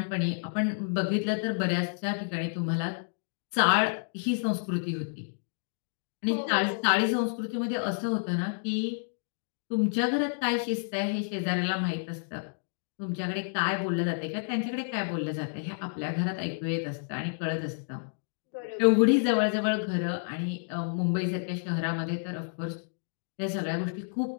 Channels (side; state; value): right; silent; digital silence